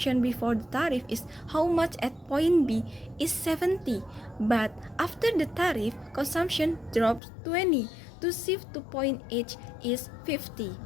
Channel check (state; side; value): drops out; right; at 7.2 s